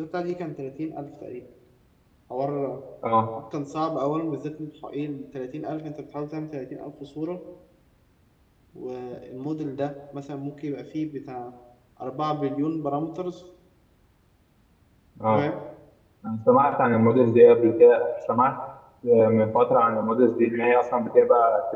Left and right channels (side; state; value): both; identical; correlation 1.00